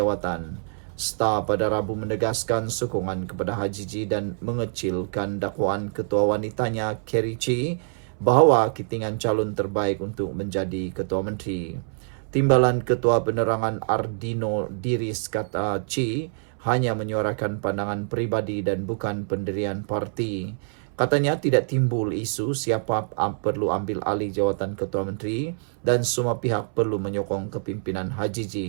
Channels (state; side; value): silent; left; 61 dB below the other